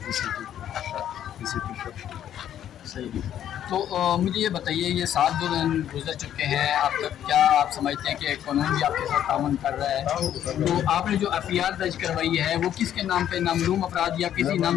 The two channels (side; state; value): right; quieter; 10.6 dB